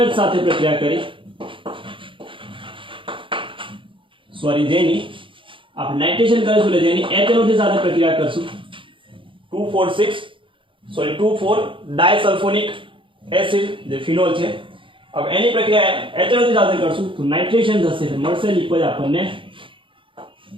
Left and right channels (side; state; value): left; late; 0.25 ms